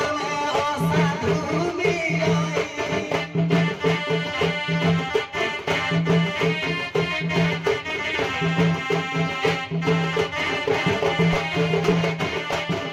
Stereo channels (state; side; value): identical; both; correlation 1.00